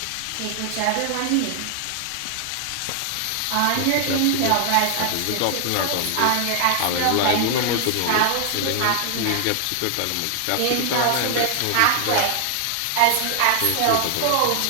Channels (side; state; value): both; different; correlation 0.00